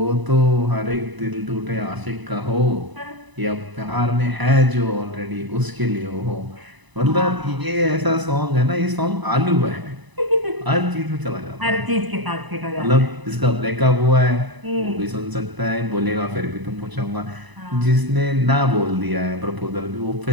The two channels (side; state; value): left; late; 1.0 ms